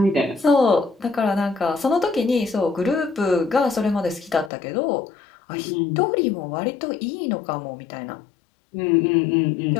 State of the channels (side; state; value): right; drops out; at 4.5 s